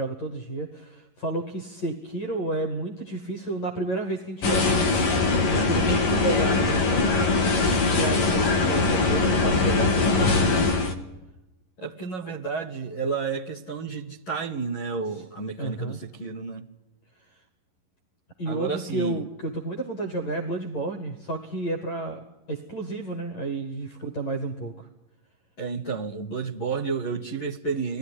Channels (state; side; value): late; right; 11 ms